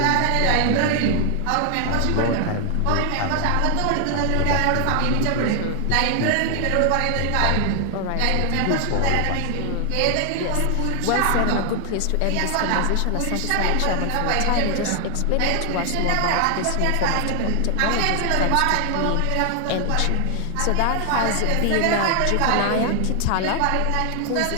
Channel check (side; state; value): both; different; correlation 0.00